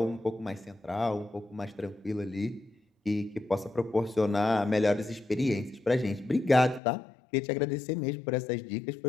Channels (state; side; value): drops out; right; at 6.8 s